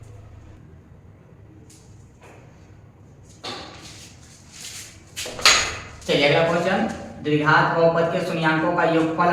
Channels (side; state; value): both; identical; correlation 1.00